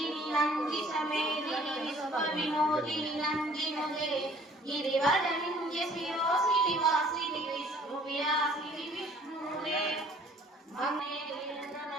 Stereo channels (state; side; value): normal; both; correlation 0.55